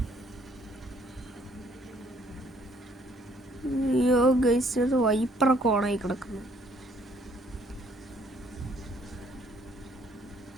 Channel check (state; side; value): normal; both; correlation 0.64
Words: ഗൈസ്, അത് വൈപ്പറൊക്കെ ഓണായി കിടക്കുന്നു.